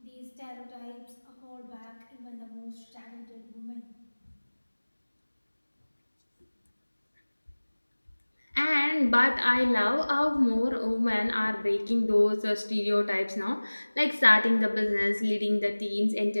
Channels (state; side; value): inverted; both; correlation -1.00